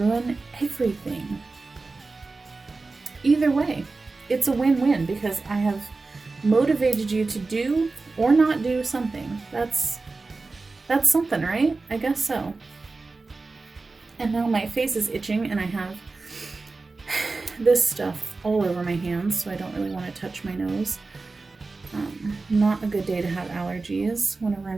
everything. Either way, it's a win-win, because I have motivated you to do or not do something. That's something, right? I guess so. And now my face is itching and I have this stuff all over my hands, so I don't really want to touch my nose. Not a good day to have allergies whenever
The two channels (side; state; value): left; quieter; 3.7 dB